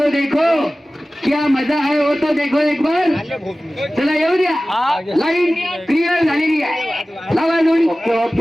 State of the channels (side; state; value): both; normal; correlation 0.97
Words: देखो. क्या मजा आहे हो तो देखो एक बार. चला येऊ द्या. लाईन क्लिअर झालेली आहे. लावा जोडी.